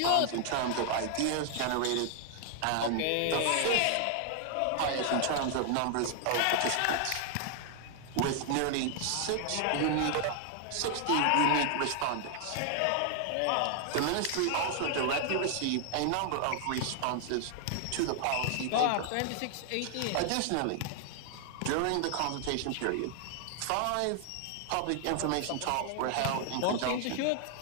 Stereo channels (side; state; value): both; different; correlation 0.00